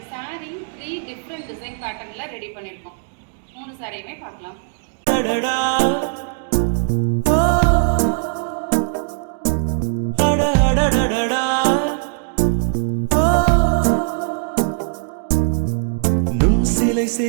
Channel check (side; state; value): left; silent; digital silence